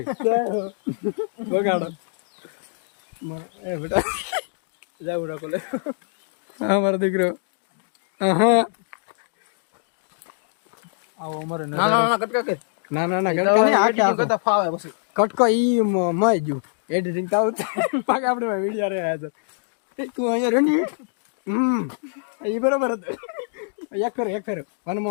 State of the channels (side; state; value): right; silent; digital silence